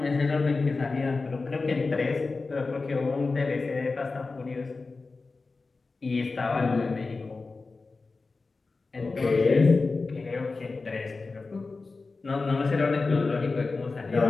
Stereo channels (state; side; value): quieter; right; 3.9 dB